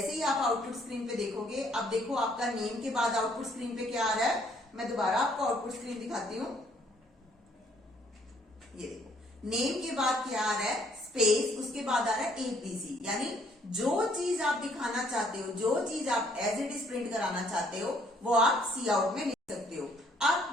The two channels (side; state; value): both; normal; correlation 0.65